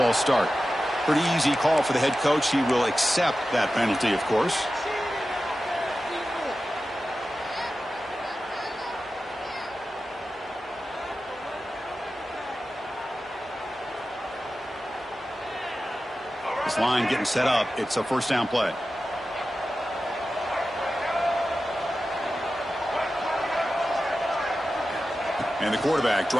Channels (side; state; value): both; normal; correlation 0.93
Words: start. Pretty easy call for the head coach. He will accept that penalty, of course. This line getting set up. It's a 1st down play. And the quarterback